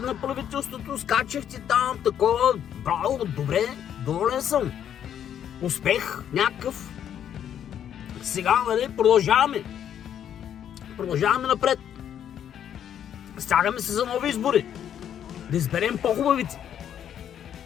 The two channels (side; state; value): right; quieter; 9.6 dB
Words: правителството, скачахте там, такова. Браво, добре, доволен съм. Успех някакъв. Сега, нали, продължаваме. Продължаваме напред. Стягаме се за нови избори. Да изберем по-хубавите.